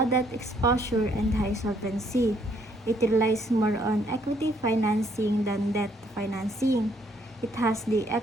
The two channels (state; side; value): normal; both; correlation 0.67